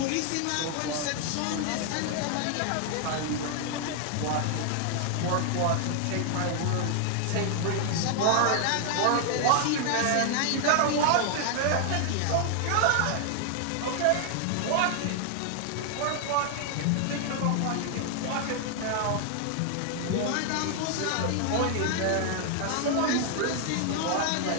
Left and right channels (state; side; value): different; both; correlation 0.00